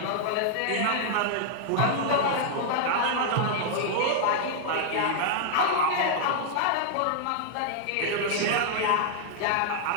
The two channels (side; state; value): both; different; correlation -0.01